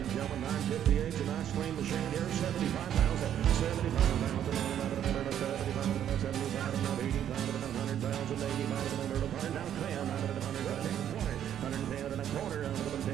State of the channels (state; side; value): quieter; left; 10.2 dB